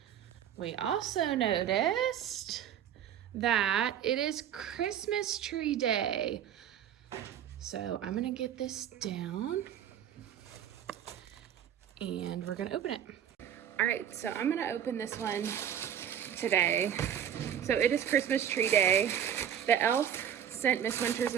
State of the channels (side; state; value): left; quieter; 9.6 dB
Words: We also noticed that it is Christmas tree day. So I'm gonna get this down and we're gonna open it. All right, so I'm gonna open this one today. So it is Christmas tree day. The elf sent Miss Winters